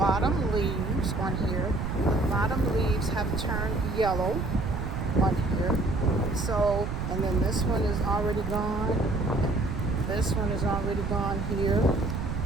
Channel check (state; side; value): noise; right; rumble, 3 dB below the sound